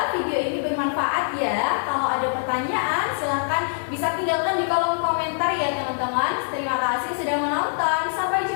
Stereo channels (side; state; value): right; silent; digital silence